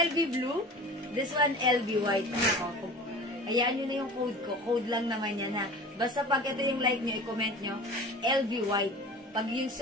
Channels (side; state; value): both; normal; correlation 0.39